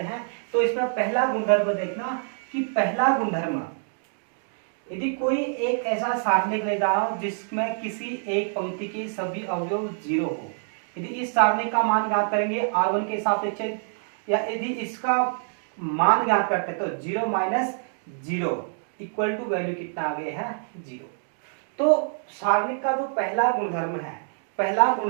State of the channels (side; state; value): left; silent; digital silence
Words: हैं। तो इसमें पहला गुणधर्म देखना कि पहला गुणधर्म, यदि कोई एक ऐसा सारणिक लेता हूं जिसमें किसी एक पंक्ति के सभी अवयव 0 हो, यदि इस सारणिक का मान ज्ञात करेंगे R1 के सापेक्ष, या यदि इसका मान ज्ञात करते हैं तो 0 माइनस 0 इक्वल टू वैल्यू कितना आ गया है 0। तो सारणिक का जो पहला गुणधर्म है, पहला